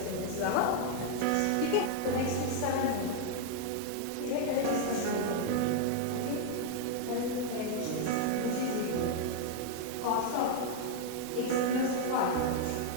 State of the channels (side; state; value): both; different; correlation 0.00